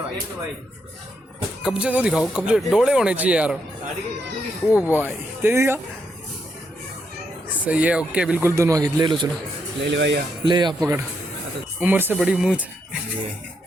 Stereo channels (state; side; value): normal; both; correlation 0.79